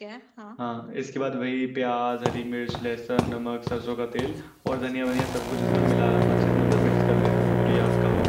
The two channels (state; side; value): identical; both; correlation 1.00